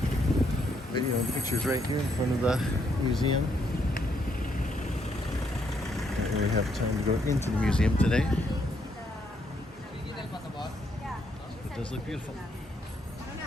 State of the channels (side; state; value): both; normal; correlation 0.74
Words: video and pictures right here in front of the museum. Don't really have time to go into the museum today. It does look beautiful.